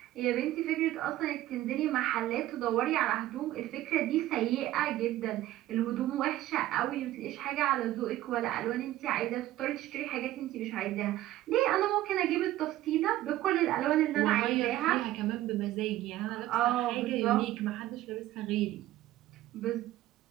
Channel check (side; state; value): left; quieter; 14.8 dB